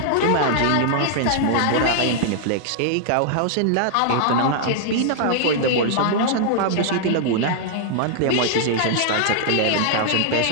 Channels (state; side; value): different; both; correlation -0.01